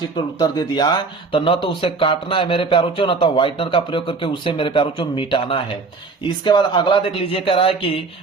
पर उत्तर दे दिया तो न तो उसे काटना है मेरे प्यारों न तो व्हाइटनर का प्रयोग करके उसे मेरे प्यारों मिटाना है। इसके बाद अगला देख लीजिए। कह रहा है कि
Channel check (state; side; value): quieter; left; 4.2 dB